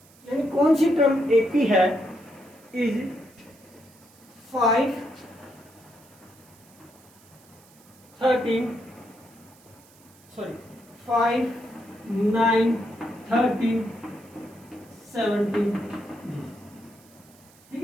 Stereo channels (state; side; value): noise; right; hiss, 27 dB below the sound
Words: यानी कौन सी टर्म एपी है, इज 5, 9, 13, 17। ठीक